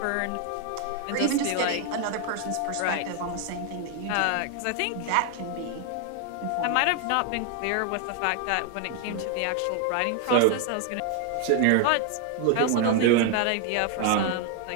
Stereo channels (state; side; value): different; both; correlation 0.01